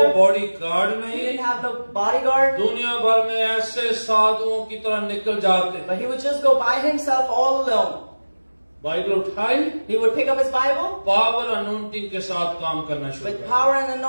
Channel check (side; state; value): both; inverted; correlation -1.00